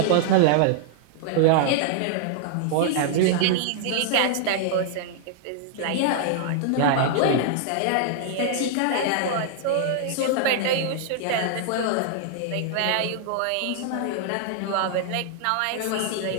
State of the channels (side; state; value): both; different; correlation -0.01